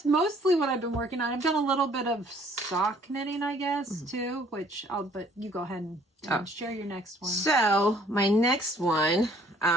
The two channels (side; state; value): both; normal; correlation 0.59